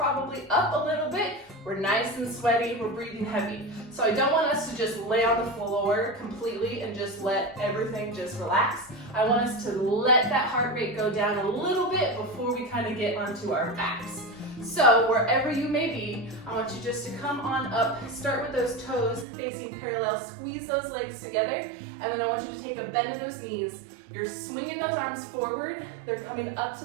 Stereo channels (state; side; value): drops out; left; at 19.2 s